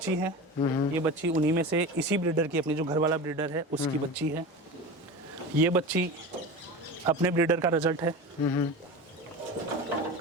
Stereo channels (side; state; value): both; normal; correlation 0.30